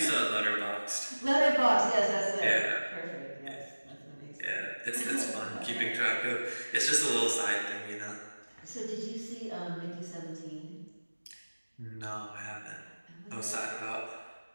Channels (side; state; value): both; inverted; correlation -1.00